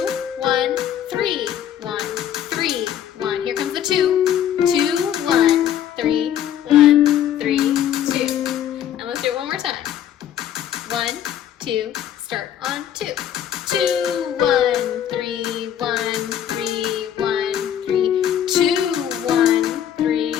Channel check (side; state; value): right; quieter; 10.2 dB